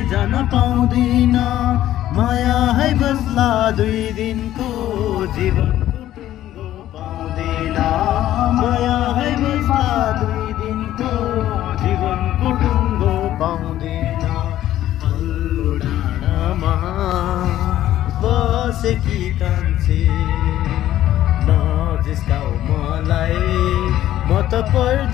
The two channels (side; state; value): right; quieter; 13.1 dB